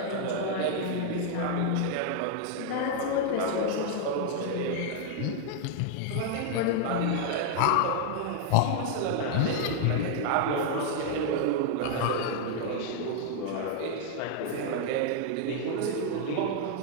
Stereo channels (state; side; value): different; both; correlation 0.00